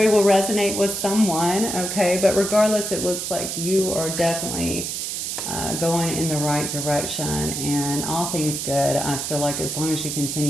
will resonate with someone, okay? But regardless, it looks like you are definitely going in the right direction, and all things good. I feel like as long as you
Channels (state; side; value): noise; right; hiss, 4 dB below the sound